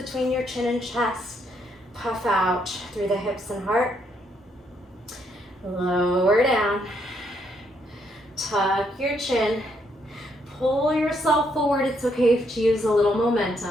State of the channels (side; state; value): both; normal; correlation 0.74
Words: your chin and chest. Puff out through the hips and heart. Lower down. Tuck your chin. Pull yourself forward. It's okay to use a little